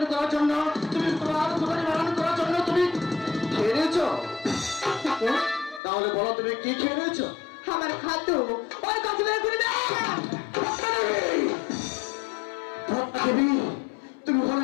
করার জন্য, তুমি তোমার ক্ষুধা নিবারণ করার জন্য তুমি খেয়ে নিয়েছো? তাহলে বলো তুমি কি খেয়ে নিয়েছো? আমার খাদ্য ওই কাছে বের করে দে। পদ্মা দেবী, তুমি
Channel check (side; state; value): right; drops out; at 5.8 s